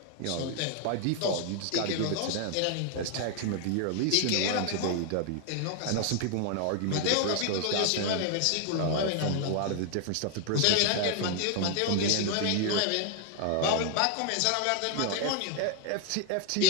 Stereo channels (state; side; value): different; both; correlation 0.00